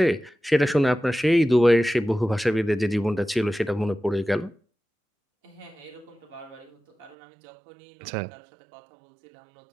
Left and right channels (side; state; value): left; drops out; at 7.2 s